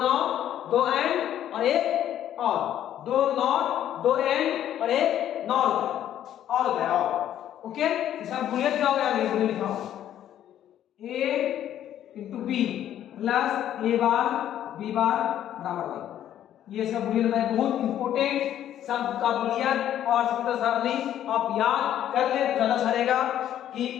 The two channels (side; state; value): right; quieter; 11.2 dB